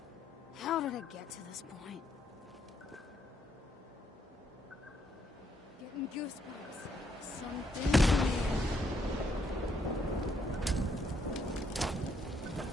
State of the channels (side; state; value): both; normal; correlation 0.74